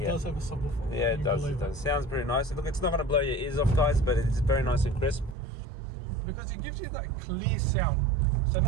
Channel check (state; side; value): drops out; left; at 5.4 s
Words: does have a subwoofer. Yeah, it does. It does. Sounds pretty nice. Look, it's not going to blow your ears off, guys, but it's very nice and crisp. Because it gives you that clear sound. So